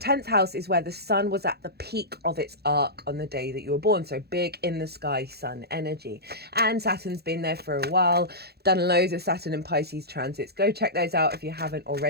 house is where the sun was at the peak of its arc on the day that you were born. So big in the sky sun energy. And Saturn's been there for a while, done loads of Saturn and Pisces transits. Go check those out if you haven't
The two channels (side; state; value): left; late; 0.47 ms